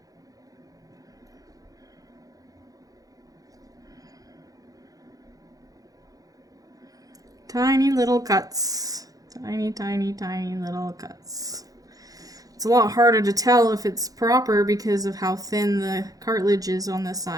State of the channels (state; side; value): late; left; 0.17 ms